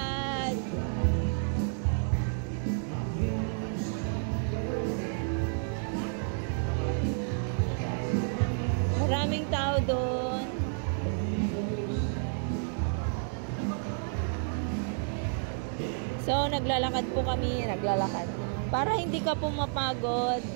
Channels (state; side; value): silent; left; 57 dB below the other